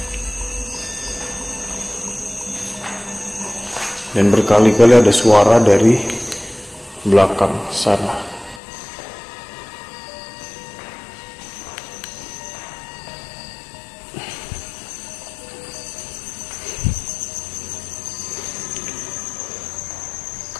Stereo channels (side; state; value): right; drops out; at 8.6 s